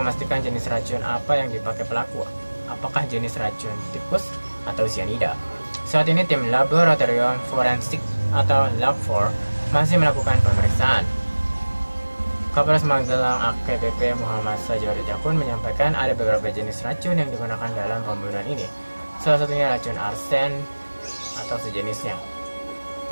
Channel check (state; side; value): inverted; both; correlation -1.00